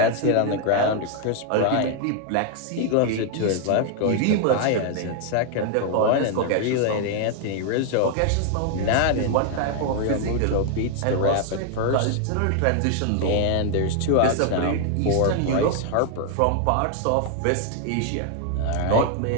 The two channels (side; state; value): both; different; correlation 0.00